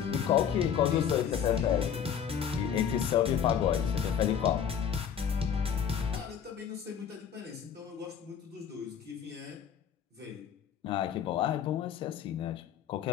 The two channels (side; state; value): right; quieter; 8.2 dB